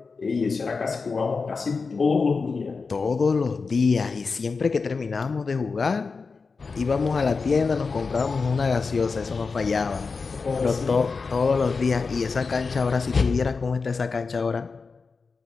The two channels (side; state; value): right; quieter; 4.6 dB